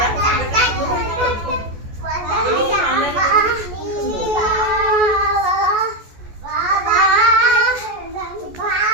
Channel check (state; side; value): late; left; 14 ms